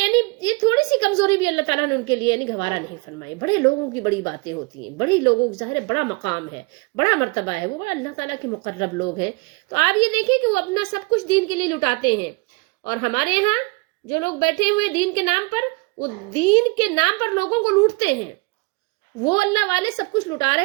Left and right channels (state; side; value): quieter; left; 28.7 dB